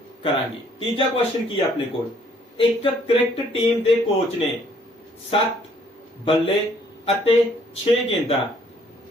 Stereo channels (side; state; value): both; normal; correlation 0.63